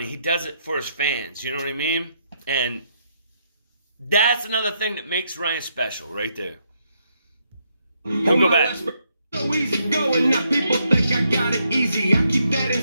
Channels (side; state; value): both; inverted; correlation -0.76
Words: He does it for his fans. You know what I mean? And that's another thing that makes Ryan special right there. We'll go back. So easy going, now people think I got it easy. I keep that